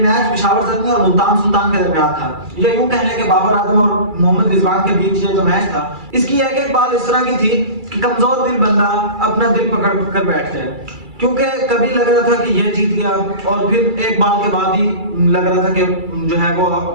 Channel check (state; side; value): late; left; 2.3 ms